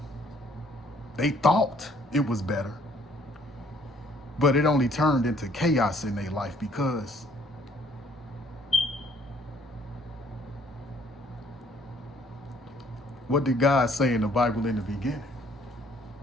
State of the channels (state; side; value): normal; both; correlation 0.61